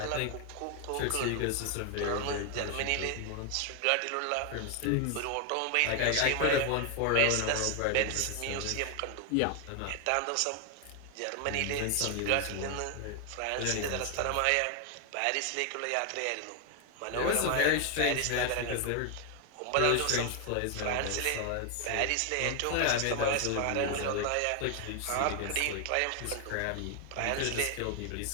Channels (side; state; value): both; different; correlation 0.00